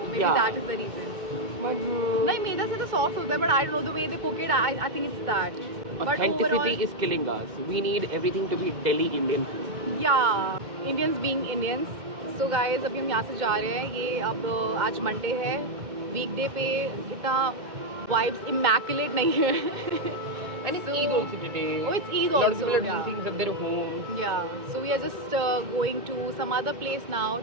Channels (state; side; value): late; left; 2.1 ms